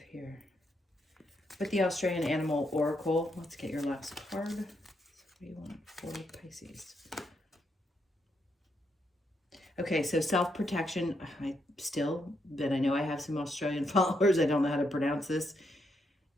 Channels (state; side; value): normal; both; correlation 0.78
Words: here. With the Australian Animal Oracle, let's get your last card. So what do you want for Pisces? Okay, so self-protection. But I know I have some Australian followers. I don't know how to pronounce this.